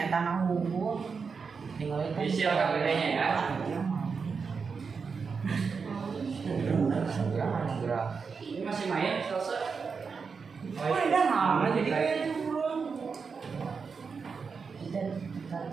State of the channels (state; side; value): quieter; left; 5.4 dB